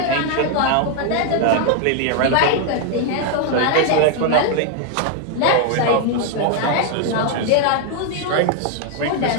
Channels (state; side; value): different; both; correlation 0.00